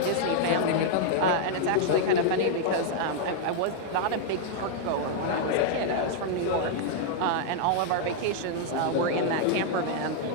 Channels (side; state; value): both; different; correlation -0.01